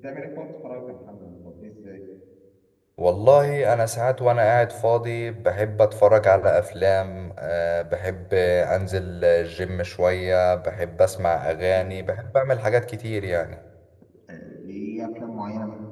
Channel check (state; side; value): identical; both; correlation 1.00